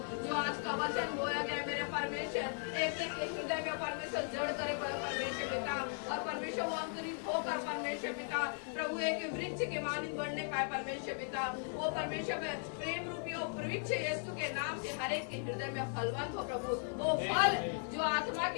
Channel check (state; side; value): silent; right; 53 dB below the other